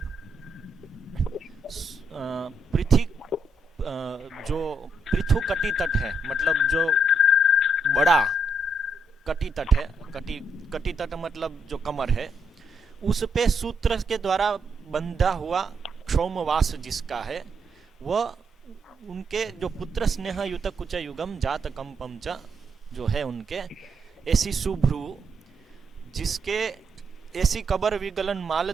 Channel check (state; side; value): normal; both; correlation 0.77